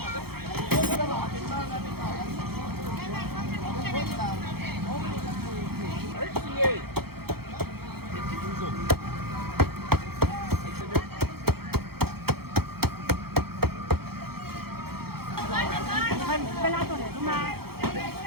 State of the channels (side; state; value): left; late; 0.95 ms